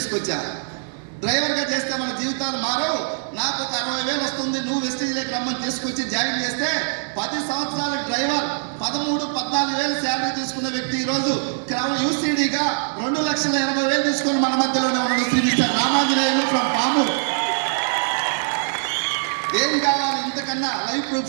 డ్రైవర్గా చేస్తే మన జీవితాలు మారవు. నాకు ఒక 60,000 వస్తుంది, నువ్వు వెస్టీజ్లోకి రమ్మని తీసుకొచ్చి జాయిన్ చేస్తే 10 సంవత్సరాల డ్రైవర్ 13-14,000 శాలరీ తీసుకున్న వ్యక్తి ఈరోజు UCDగా 2,80,000 తీసుకొని మన మధ్యలోనే ఉన్నాడు. Shri mister Ramanjaneyulu from Pamuru. ఏం కావాలి ఇంతకన్నా? Life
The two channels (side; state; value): left; silent; 64 dB below the other